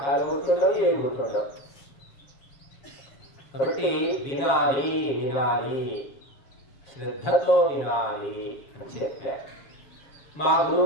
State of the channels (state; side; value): late; right; 7.0 ms